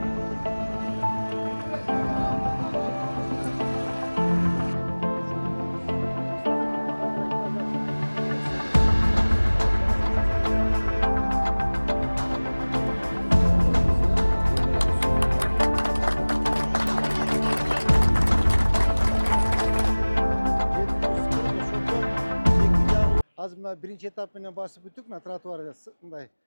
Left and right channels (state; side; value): inverted; both; correlation -1.00